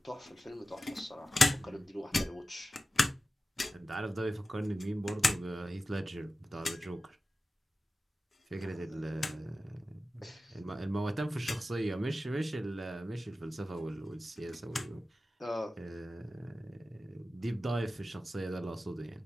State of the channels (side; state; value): both; normal; correlation 0.94